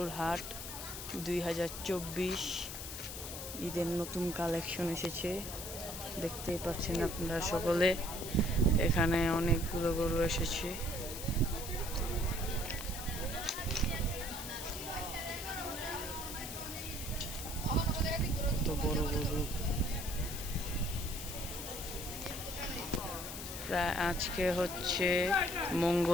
হাট 2024। ঈদের নতুন কালেকশন এসেছে, দেখতেই পাচ্ছেন আপনারা সকলে। এখানে অনেকগুলো গরু এসেছে। তো বড় গরু প্রায় আজকে হচ্ছে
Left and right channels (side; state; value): left; noise; hiss, 8 dB below the sound